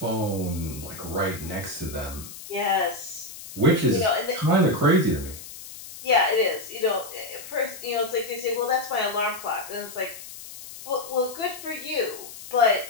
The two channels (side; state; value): left; noise; hiss, 14 dB below the sound